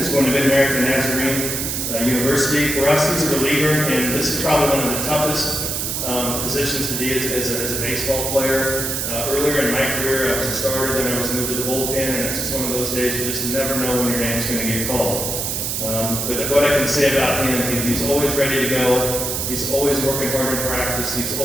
going to Mid-American Nazarene University. For us, he's a reliever, and this is probably one of the toughest positions to be as a baseball player. Earlier in my career, I was a starter, then I was moved to the bullpen, and it's just one of those days you just never know when your name's going to get called. But what I can say about him, he's always ready to go. He's always working hard in practice. He's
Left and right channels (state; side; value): noise; right; hiss, 2 dB below the sound